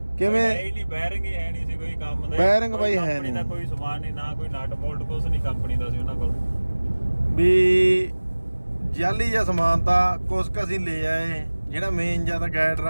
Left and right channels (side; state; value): both; inverted; correlation -1.00